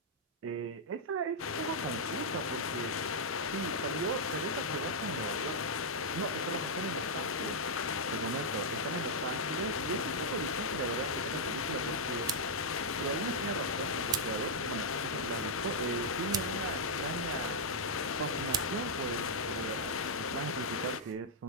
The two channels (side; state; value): both; normal; correlation -0.06